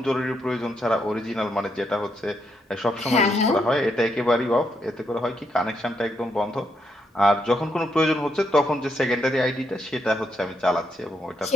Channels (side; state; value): both; normal; correlation 0.78